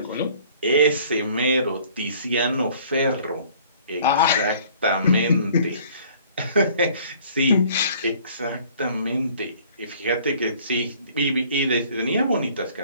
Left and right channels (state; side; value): inverted; both; correlation -0.54